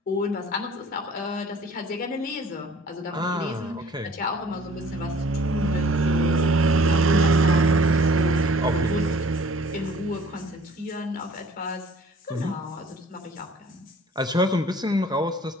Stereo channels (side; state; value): both; normal; correlation 0.53